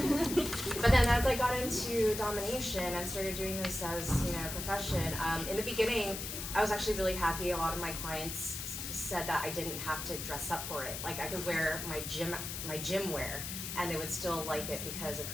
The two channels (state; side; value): noise; left; hiss, 6 dB below the sound